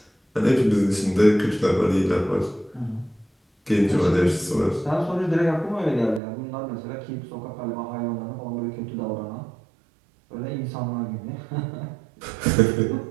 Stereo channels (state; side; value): drops out; left; at 6.2 s